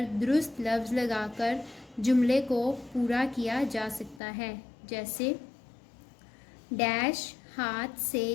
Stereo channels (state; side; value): drops out; right; at 4.2 s